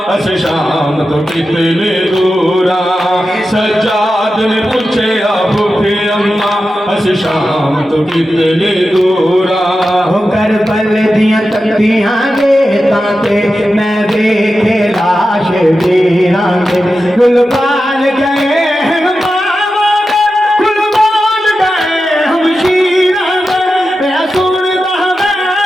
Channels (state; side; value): normal; both; correlation 0.91